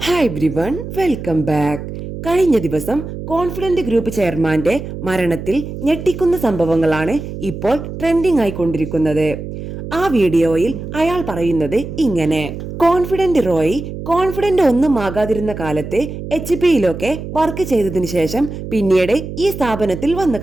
Hi everyone, welcome back. കഴിഞ്ഞ ദിവസം കോൺഫിഡന്റ് ഗ്രൂപ്പ് ചെയർമാന്റെ മരണത്തിൽ ഞെട്ടിക്കുന്ന സംഭവങ്ങളാണ് ഇപ്പോൾ ട്രെൻഡിംഗ് ആയിക്കൊണ്ടിരിക്കുന്നത്. ആ വീഡിയോയിൽ അയാൾ പറയുന്നത് ഇങ്ങനെ: കോൺഫിഡന്റ് റോയി കോൺഫിഡന്റ് ഒന്നും ആകാതിരുന്ന കാലത്ത് HP-യിലൊക്കെ വർക്ക് ചെയ്തതിനു ശേഷം പിന്നീട് ഈ സ്ഥാപനത്തിൽ വന്നു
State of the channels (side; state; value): right; noise; hum, 9 dB below the sound